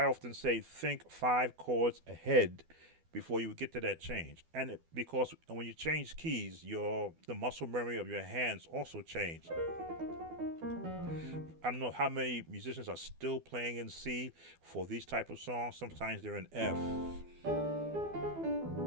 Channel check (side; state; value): left; late; 12 ms